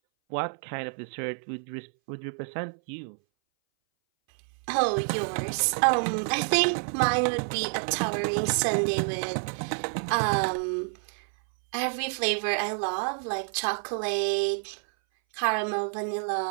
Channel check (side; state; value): left; silent; 59 dB below the other